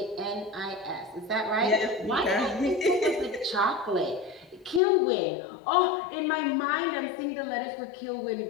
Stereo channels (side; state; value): right; drops out; at 4.8 s